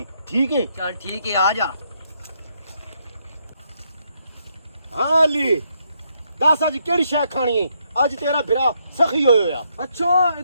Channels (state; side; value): inverted; both; correlation -0.76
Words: ਠੀਕ ਹੈ? ਚੱਲ ਠੀਕ ਹੈ, ਆ ਜਾ। ਹਾਂ ਅਲੀ, ਦੱਸ ਅੱਜ ਕਿਹੜੀ ਸ਼ੈ ਖਾਣੀ ਹੈ? ਅੱਜ ਤੇਰਾ ਭਰਾ ਸਖੀ ਹੋਇਆ। अच्छा